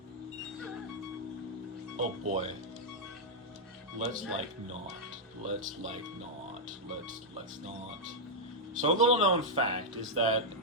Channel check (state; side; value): normal; both; correlation -0.05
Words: Oh boy. Let's not. Let's not. So a little known fact is that